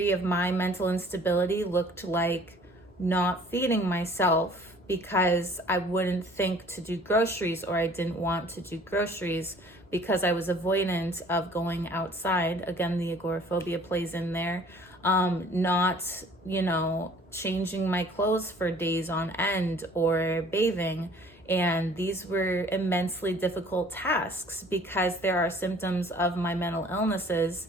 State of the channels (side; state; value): both; normal; correlation 0.53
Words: of my mental instability looked like not feeding myself because I wouldn't think to do groceries, or I didn't want to do groceries because I was avoidant of going outside. Again, the agoraphobia plays in there. Not, changing my clothes for days on end or bathing. And these were immensely difficult tasks because there are symptoms of my mental illnesses